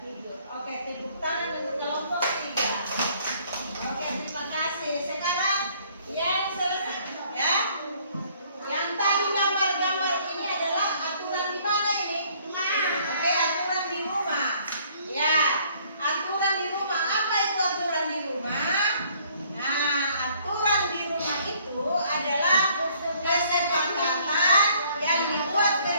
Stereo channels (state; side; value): inverted; both; correlation -0.61